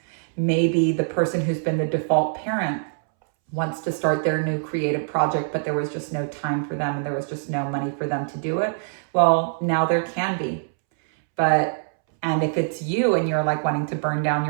maybe the person who's been the default parent wants to start their new creative project, but there was just no time for them and there was just no money for them to do it. Well, now there can be. And if it's you and you're like wanting to burn down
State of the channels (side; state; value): left; silent; 63 dB below the other